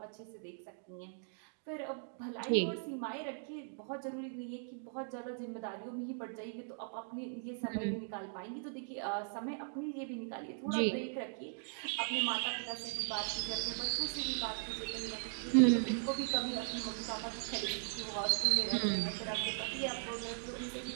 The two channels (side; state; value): left; silent; digital silence